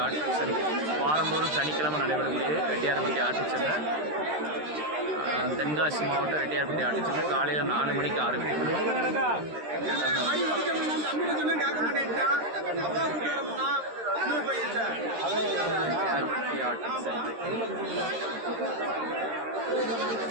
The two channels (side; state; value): left; late; 13 ms